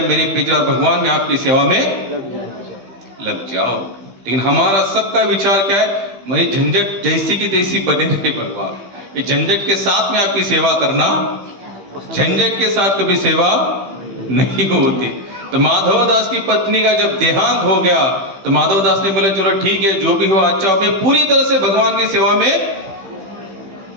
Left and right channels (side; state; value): left; late; 15 ms